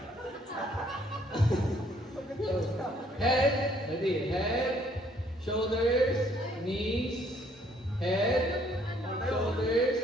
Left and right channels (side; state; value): both; normal; correlation 0.64